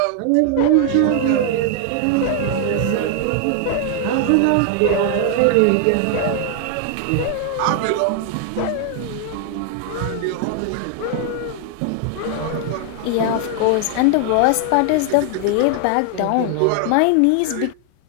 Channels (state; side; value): different; both; correlation 0.00